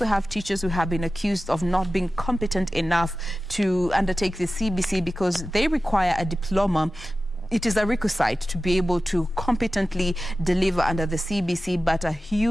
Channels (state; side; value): normal; both; correlation 0.95